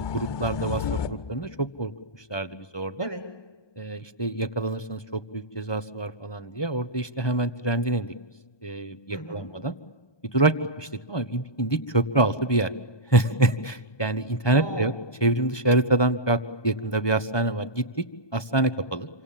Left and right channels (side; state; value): right; late; 1.2 ms